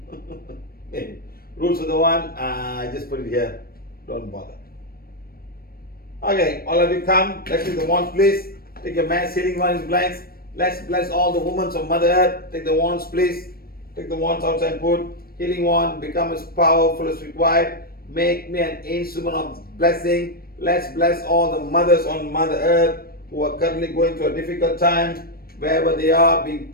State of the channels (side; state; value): right; late; 0.44 ms